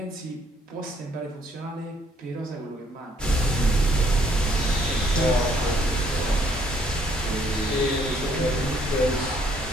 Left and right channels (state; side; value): normal; both; correlation 0.66